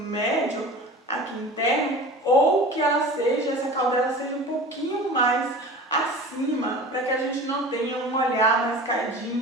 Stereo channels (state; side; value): normal; both; correlation 0.37